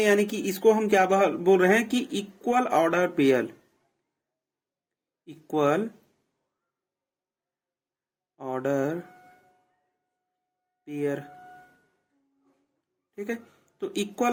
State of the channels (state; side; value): identical; both; correlation 1.00